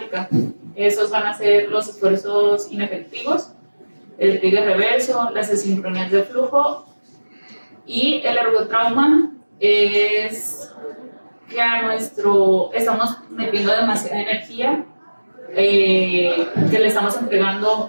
Esos van a ser los esfuerzos inefectivos, el trigger reverso, las asincronías de flujo, y el ergotrauma es que estamos metiendo demasiada energía que le estamos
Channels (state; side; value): inverted; both; correlation -1.00